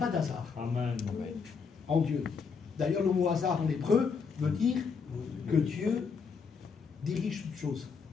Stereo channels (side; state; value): right; quieter; 5.5 dB